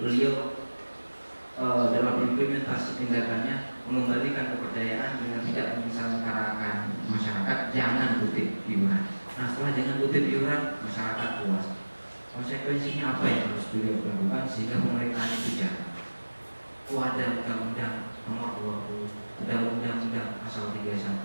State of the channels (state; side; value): inverted; both; correlation -1.00